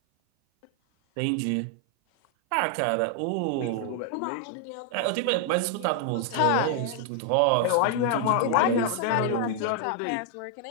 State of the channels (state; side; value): different; both; correlation 0.00